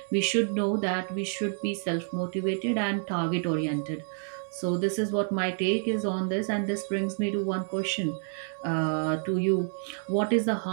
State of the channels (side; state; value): left; silent; 59 dB below the other